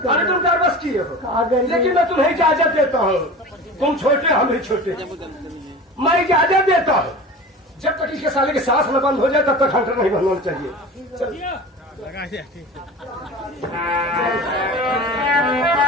अरे तुम का कर बस किए हो, अगर लेकिन मैं तुम्हें इजाजत देता हूँ। तुम छोटे हम ही छोटे, मैं इजाजत देता हूँ। जब तक इसके साले की सांस न बंद हो जाए तब तक हंटर नहीं बंद होना चाहिए। चल।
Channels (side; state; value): both; normal; correlation 0.35